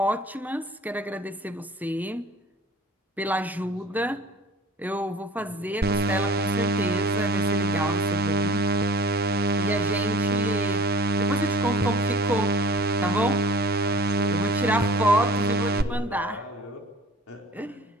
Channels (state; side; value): normal; both; correlation 0.46